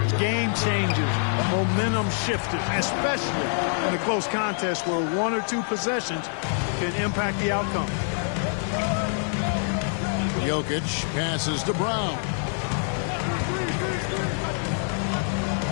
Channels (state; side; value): silent; right; 61 dB below the other